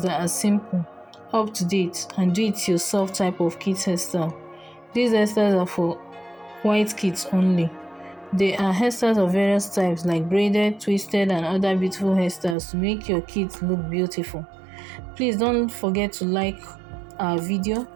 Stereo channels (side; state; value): left; drops out; at 12.6 s